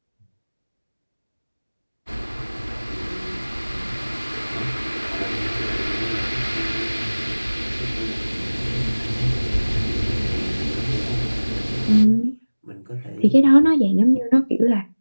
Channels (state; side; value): inverted; both; correlation -1.00